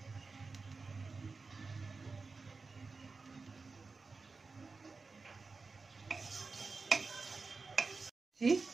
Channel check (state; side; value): quieter; left; 4.2 dB